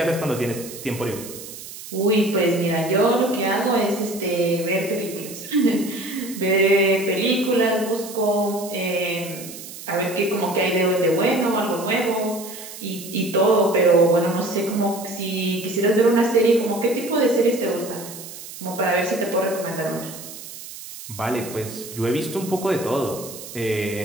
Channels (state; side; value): noise; right; hiss, 13 dB below the sound